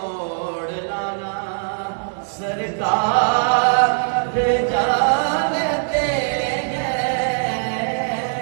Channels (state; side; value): silent; left; digital silence